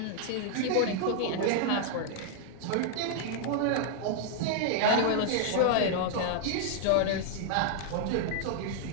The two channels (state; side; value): different; both; correlation 0.00